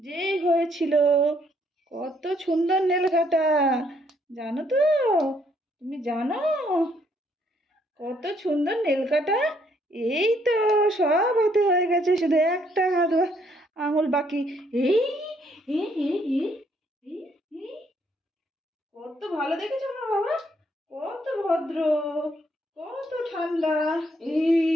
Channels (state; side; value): normal; both; correlation 0.69